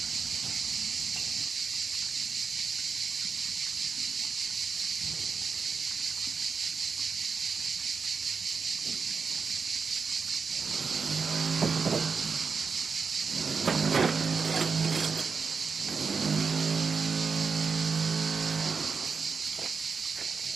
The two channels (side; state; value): left; quieter; 5.3 dB